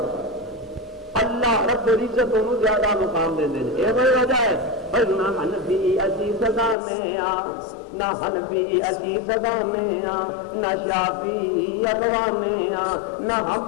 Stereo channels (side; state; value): right; drops out; at 6.8 s